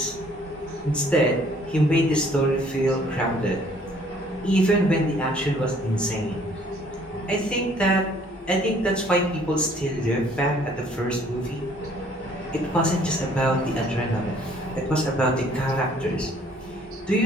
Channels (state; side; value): normal; both; correlation 0.59